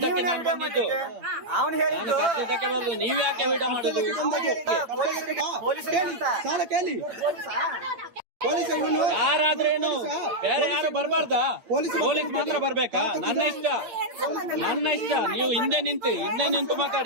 ನಾನು ಬಂದಿದ್ದು. ಅವನು ಹೇಳಿದ್ದು ಕರ್ದಿದ್ದಕ್ಕೆ ಬಂದು ನೀವ್ ಯಾಕೆ ವಿಡಿಯೋ ಮಾಡುದು? ಪೊಲೀಸರಿಗೆ ಅಂತ. ಸಾಲ ಕೇಳಿ ಪೊಲೀಸ್ ಇವನು ಯಾರಾದ್ರೇನು ಬೇರೆ ಯಾರು ಬರ್ಬಾರ್ದಾ? ಪೊಲೀಸ್ ಮಾತ್ರ ಬರ್ಬೇಕಾ? ನನ್ನ ಇಷ್ಟ. ನೀವು ಹಿಂದೆ ನಿಂತು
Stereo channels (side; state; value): left; late; 8.8 ms